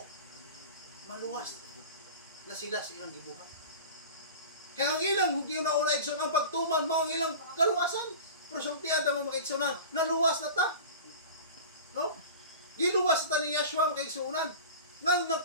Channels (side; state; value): both; inverted; correlation -0.35